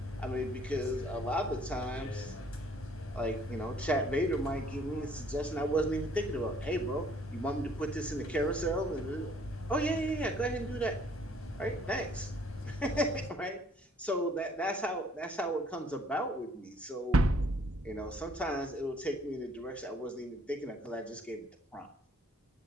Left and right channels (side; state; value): both; normal; correlation 0.61